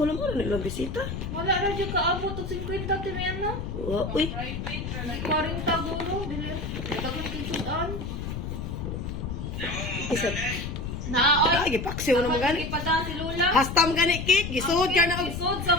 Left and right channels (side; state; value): left; noise; rumble, 5 dB below the sound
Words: lang mo nilang bisita. Wala na dyan kaabot at 50 timi ano? Uy. 40 gulo. Dili. Nagkakang kisudan. Isa. Naoy. Ay, gipaksiw na mga gani. Ipada si Lula. Hastam gani cake, gisud ka na. Isod sa